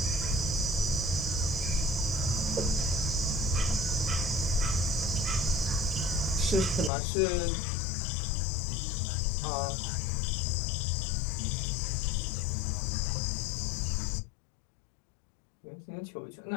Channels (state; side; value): drops out; right; at 6.9 s